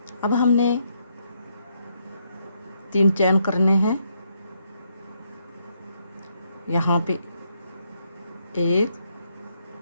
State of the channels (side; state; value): both; inverted; correlation -0.76